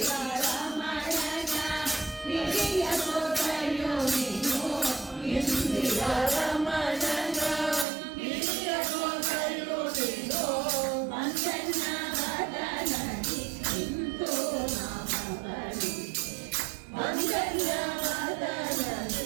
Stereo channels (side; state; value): left; drops out; at 7.9 s